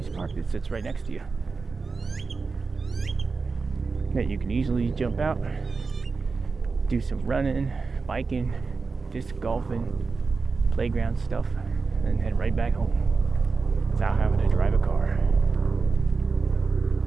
park that sits right next to you that you can easily jump out, do some running, biking, disc golfing, playground stuff, and head right back home without having to drive a car.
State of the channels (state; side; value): quieter; left; 4.4 dB